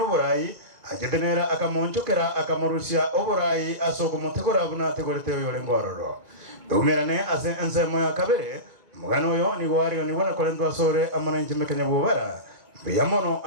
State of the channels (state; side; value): late; left; 2.2 ms